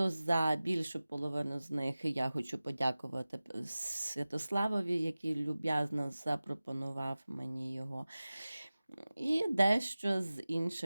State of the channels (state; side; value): inverted; both; correlation -0.97